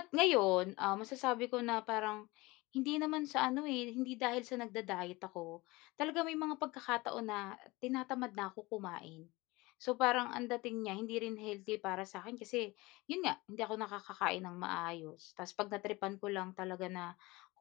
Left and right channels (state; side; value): quieter; right; 22.3 dB